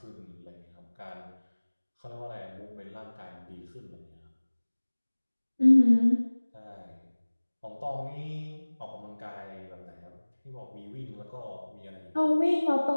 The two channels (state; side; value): inverted; both; correlation -1.00